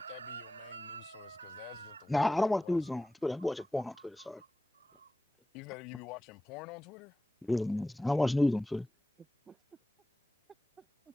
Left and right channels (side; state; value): both; normal; correlation 0.96